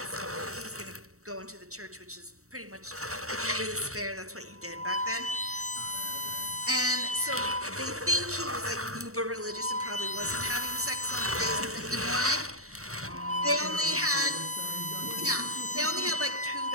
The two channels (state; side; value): late; left; 0.64 ms